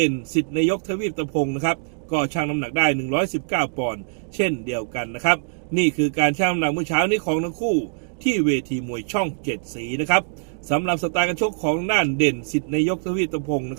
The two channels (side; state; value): left; silent; digital silence